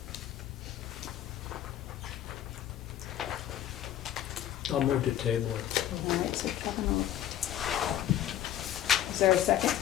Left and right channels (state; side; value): quieter; right; 11.7 dB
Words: I'll move to table it. All right, so Kevin will. Is there a second